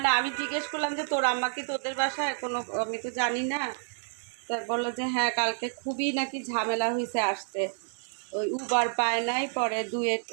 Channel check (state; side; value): silent; left; 58 dB below the other